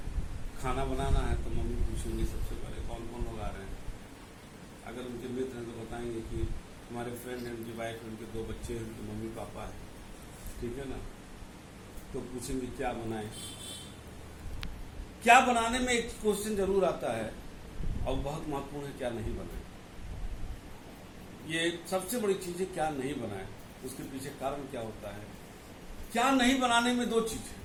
खाना बनाना है, तो मम्मी पूछेंगे सबसे पहले कौन कौन लोग आ रहे हैं। अगर उनके मित्र हैं तो बताएंगे कि हमारे फ्रेंड हैं, उनकी वाइफ है, उनके 2 बच्चे हैं, उनके मम्मी पापा है। ठीक है ना, तो पूछेंगे क्या बनाएं। क्या बनाने में एक क्वेश्चन जरूर आता है, और बहुत महत्वपूर्ण है क्या नहीं बनाए। ये सबसे बड़ी चीज है क्या नहीं बनाए, उसके पीछे कारण क्या होता है। क्या नहीं बनाने में 2 चीज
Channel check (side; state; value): both; identical; correlation 1.00